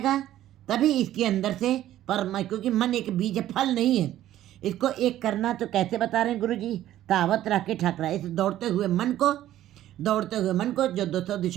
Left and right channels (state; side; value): quieter; left; 13.1 dB